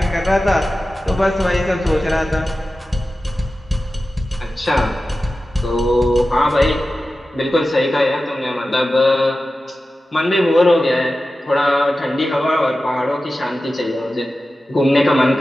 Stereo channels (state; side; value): normal; both; correlation 0.94